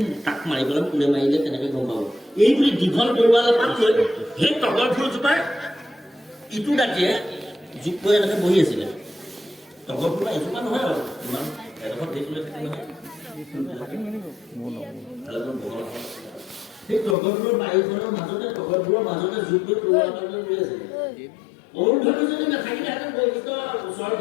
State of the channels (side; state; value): right; drops out; at 17.2 s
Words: তাক মাৰিবলৈ কোনে মাৰিলে তেনেকৈ গম পাব এই বুলি দীঘল বৰুৱালে পাত লৈ সেই তগৰ ফুলজোপাৰ ইটো দাঁতিয়ে জোক কৰি এনেকৈ বহি আছিলে তগৰ ফুল এজোপা নহয় আৰু ইমান এডোখৰ দেখিলে নহয় সেই তগৰ ফুলৰ বাৰীখনৰ মাজতে তগৰ ফুলৰ মাজতে জোক কৰি তৰুৱা ৰৈ আছিলে অৰুন্ধতী যদি নাথাকিলেহেঁতেন বৈশিষ্ট্য ওচৰত